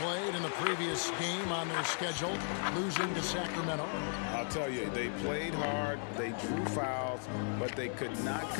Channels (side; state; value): right; silent; 54 dB below the other